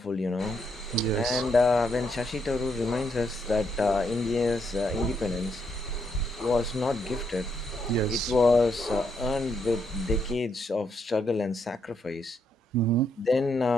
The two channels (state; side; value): normal; both; correlation 0.76